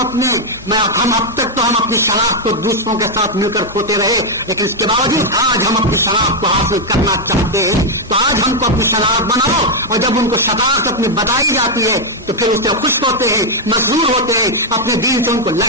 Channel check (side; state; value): both; normal; correlation 0.00